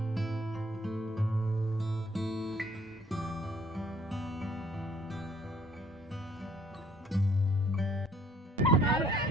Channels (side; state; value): both; normal; correlation 0.60